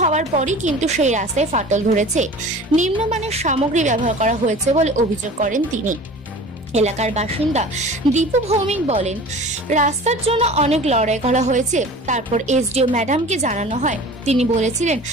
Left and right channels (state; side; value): normal; both; correlation 0.41